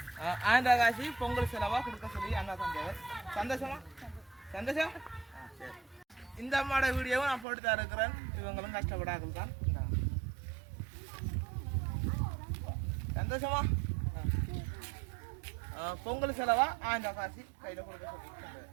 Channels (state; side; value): drops out; left; at 7.5 s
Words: 1000 காசு பொங்கல் செலவா கொடுக்க சொல்லி அண்ணா தந்தவர். சந்தோஷமா? சந்தோஷம். சரி, இந்த அம்மாவோட வீடியோவும் நான் போட்டு தான் இருக்கிறேன். இவங்களும் கஷ்டப்படாக்கள் தான். சந்தோஷமா? பொங்கல் செலவா 1000 காசு கையில் கொடுக்க சொல்லி.